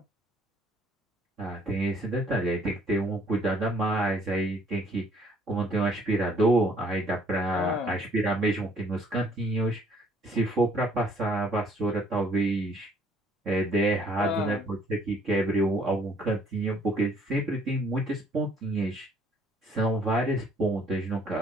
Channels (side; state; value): both; normal; correlation 0.62